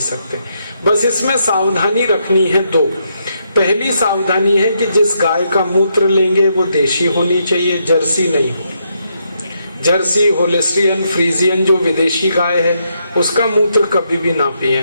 हैं। बस इसमें सावधानी रखनी है दो। पहली सावधानी है कि जिस गाय का मूत्र लेंगे वो देशी होनी चाहिए, जर्सी नहीं हो। जर्सी, होलेस्टियन, फ्रीजियन जो विदेशी गाय है उसका मूत्र कभी भी ना पिए।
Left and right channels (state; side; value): inverted; both; correlation -0.78